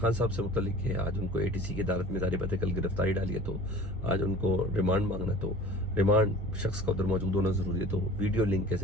साहब से मुतल्लिक है। आज उनको ATC की अदालत में जारी बात है, कल गिरफ्तारी डाली है, तो आज उनको रिमांड मांगना, तो रिमांड शख्स का उधर मौजूद होना जरूरी है। तो वीडियो लिंक के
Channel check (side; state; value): both; normal; correlation 0.43